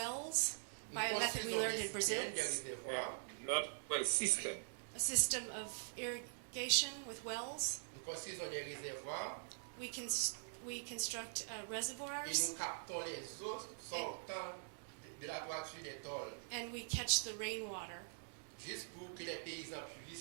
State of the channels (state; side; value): silent; left; digital silence